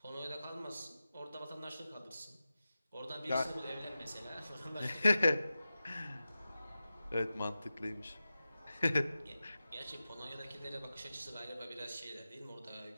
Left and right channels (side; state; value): both; inverted; correlation -0.94